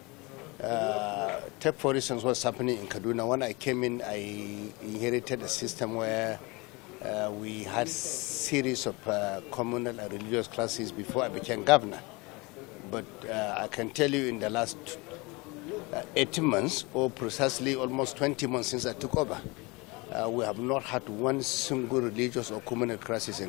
Take for instance what's happening in Kaduna. When I came in, I inherited a system where we had series of communal and religious classes before I became governor. But I can tell you in the last 18 months, or precisely almost 20 months since I took over, we have not had one single religious or communal crisis in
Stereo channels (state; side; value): quieter; right; 25.9 dB